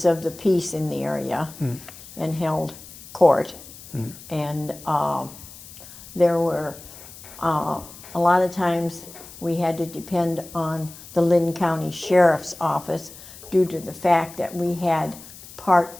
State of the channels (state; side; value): noise; left; hiss, 17 dB below the sound